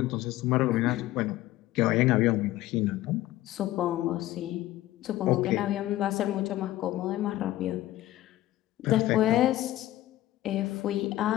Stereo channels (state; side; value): quieter; right; 15.5 dB